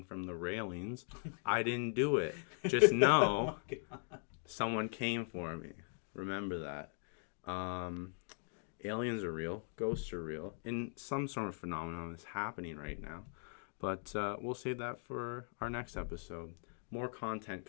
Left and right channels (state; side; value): silent; right; 51 dB below the other